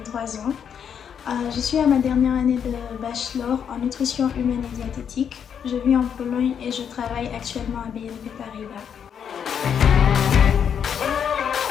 ans. Je suis à ma dernière année de bachelor en nutrition humaine et diététique. Je vis en Pologne et je travaille actuellement à BNP Paribas.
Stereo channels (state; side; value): quieter; right; 7.9 dB